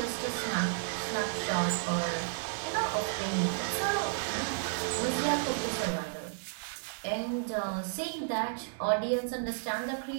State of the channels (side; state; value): left; silent; digital silence